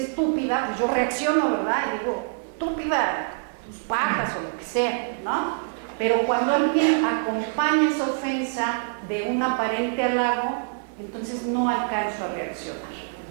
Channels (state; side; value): silent; left; digital silence